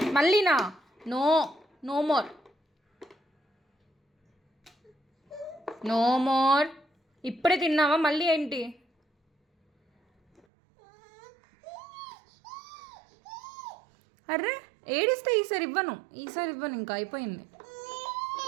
మళ్ళీనా? No more. ఇప్పుడే తిన్నావా? మళ్ళీ ఏంటి? అర్రే ఏడిస్తే ఈసారి ఇవ్వను. ఇంకా అయిపోయింది.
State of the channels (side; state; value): left; drops out; at 10.4 s